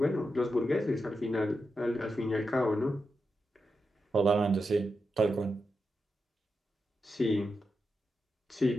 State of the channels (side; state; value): both; normal; correlation 0.87